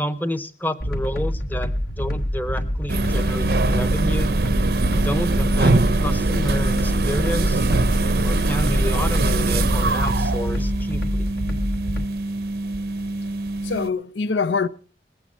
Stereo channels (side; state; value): both; normal; correlation 0.75